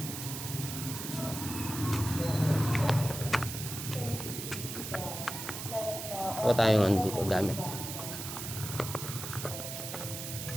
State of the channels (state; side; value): noise; right; hiss, 7 dB below the sound